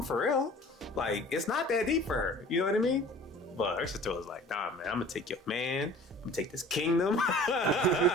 for real. Like, it's not that deep for her. You know what I mean? But her sister was like, nah, man, I'm going to take your man. I'm going to take this kingdom.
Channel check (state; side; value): normal; both; correlation 0.46